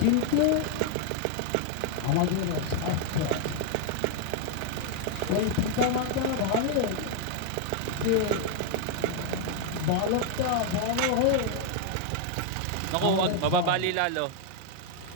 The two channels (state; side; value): different; both; correlation 0.00